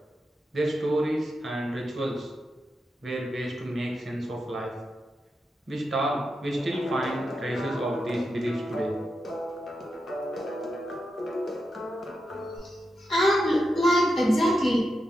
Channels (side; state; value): both; normal; correlation 0.87